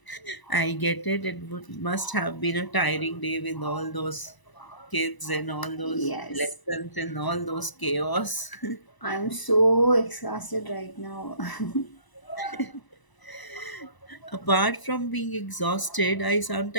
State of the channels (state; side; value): late; right; 1.0 ms